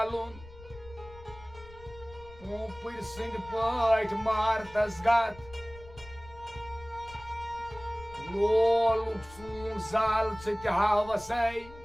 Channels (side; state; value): left; noise; rumble, 19 dB below the sound